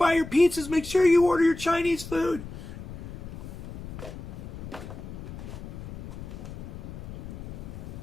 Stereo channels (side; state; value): left; noise; rumble, 11 dB below the sound